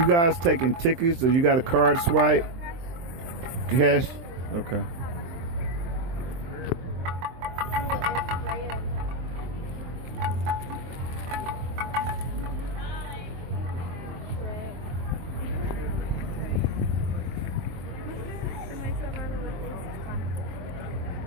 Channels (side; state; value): left; late; 23 ms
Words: guys taking tickets or you got a card swipe? Cash? Okay.